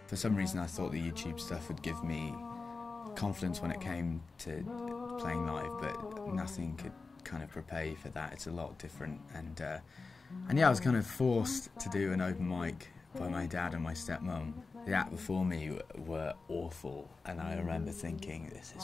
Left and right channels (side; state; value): right; quieter; 4.1 dB